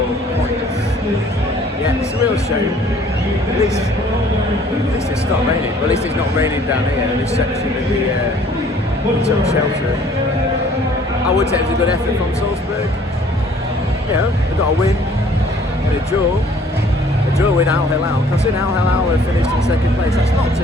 points. Yeah, it's a real shame. At least it's stopped raining. Well, at least it's not raining down here in this section of the took shelter. I would say it was a good effort from Salzburg. You know, they got a win and a draw. A draw with Al Hilal. Considering Al Hilal have finished in 2nd place, that's not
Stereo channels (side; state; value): both; normal; correlation 0.56